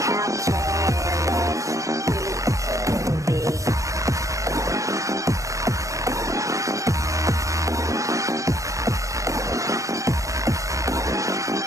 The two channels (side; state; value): left; late; 0.16 ms